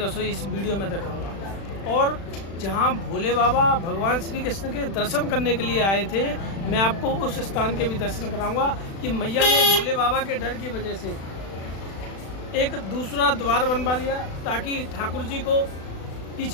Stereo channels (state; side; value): late; right; 36 ms